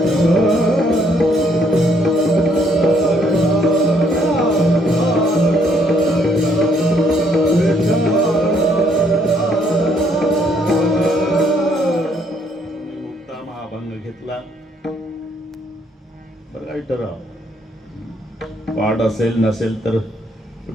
घेतला बरं, ठराव पाठ असेल नसेल तर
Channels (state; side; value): normal; both; correlation 0.69